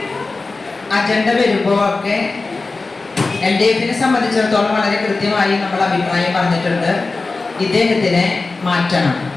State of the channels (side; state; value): right; quieter; 3.7 dB